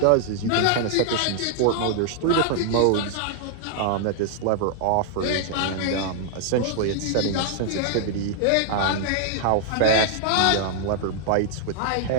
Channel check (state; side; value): different; both; correlation 0.00